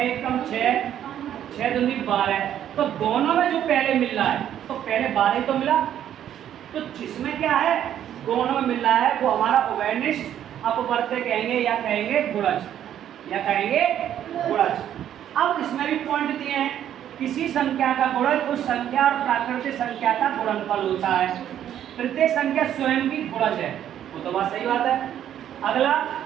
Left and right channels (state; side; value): quieter; left; 10.5 dB